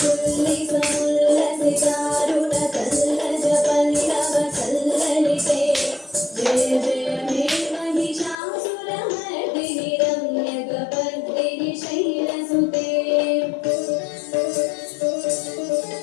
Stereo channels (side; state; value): right; drops out; at 8.3 s